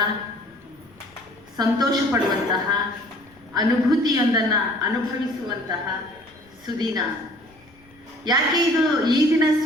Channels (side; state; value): left; noise; rumble, 29 dB below the sound